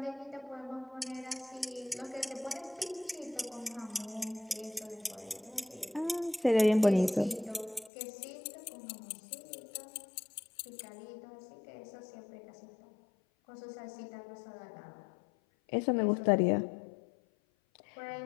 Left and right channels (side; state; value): right; drops out; at 7.9 s